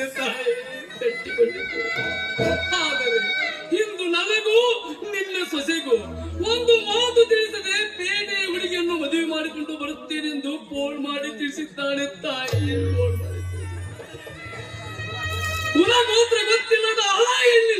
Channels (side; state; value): both; identical; correlation 1.00